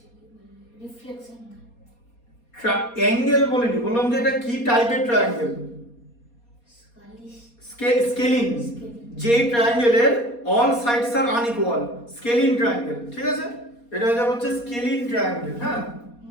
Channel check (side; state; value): right; late; 4.2 ms